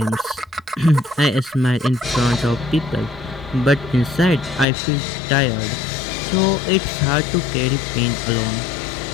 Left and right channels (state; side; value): drops out; right; at 4.7 s